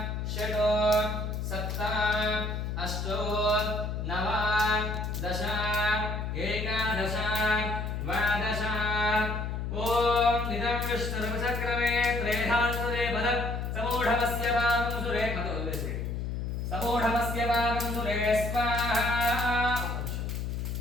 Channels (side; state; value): left; noise; hum, 3 dB below the sound